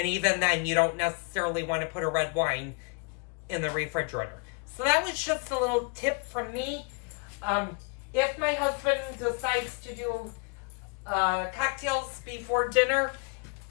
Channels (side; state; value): right; quieter; 33.9 dB